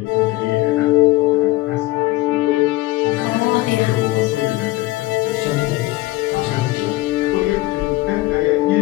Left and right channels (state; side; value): quieter; right; 18.8 dB